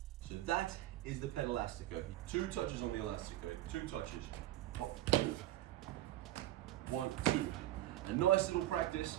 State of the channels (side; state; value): left; quieter; 14.7 dB